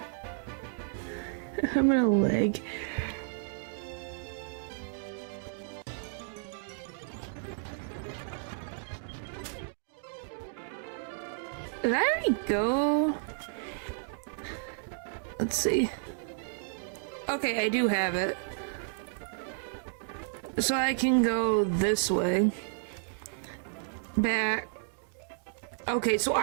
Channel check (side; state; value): left; silent; digital silence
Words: I'm gonna leg. There we go. Let's see. Okay, I do have it. So I can go this way. Back. Okay, so